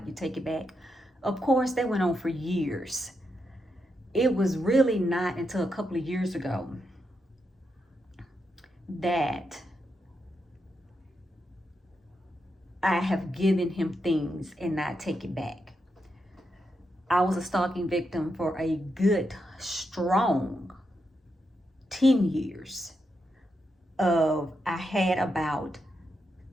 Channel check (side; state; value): both; normal; correlation 0.84